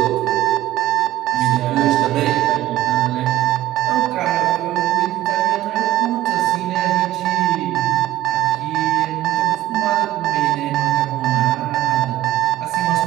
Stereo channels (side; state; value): left; quieter; 14.7 dB